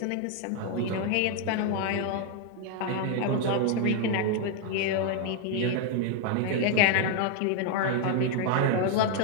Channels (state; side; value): different; both; correlation 0.00